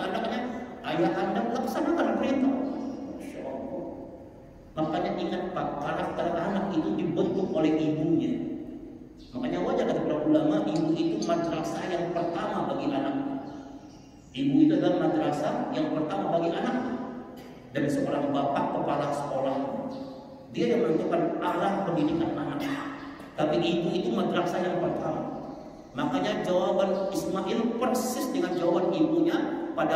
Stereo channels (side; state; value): both; identical; correlation 1.00